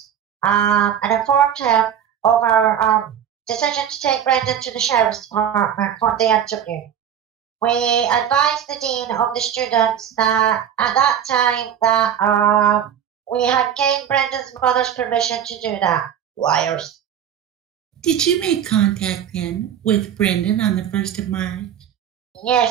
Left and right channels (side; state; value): left; quieter; 9.1 dB